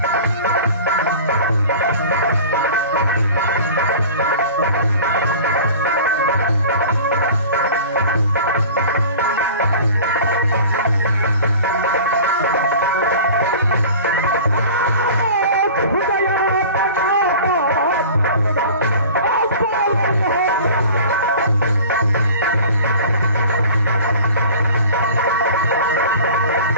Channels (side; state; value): both; inverted; correlation -0.41